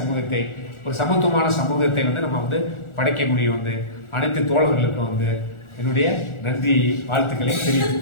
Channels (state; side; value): late; right; 1.4 ms